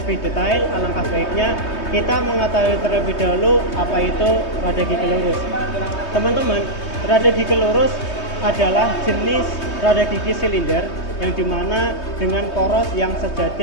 detail, alangkah baiknya kita mengetahui terlebih dahulu apa itu rada gigi lurus. Teman-teman, rada gigi lurus adalah jenis rada gigi silinder yang dimana dengan poros yang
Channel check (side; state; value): right; late; 3.2 ms